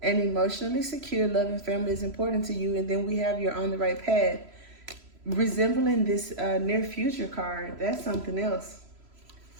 An emotionally secure, loving family is important to you. And then we have you're on the right path. Resembling this near future card, that's something else.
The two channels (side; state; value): left; late; 3.0 ms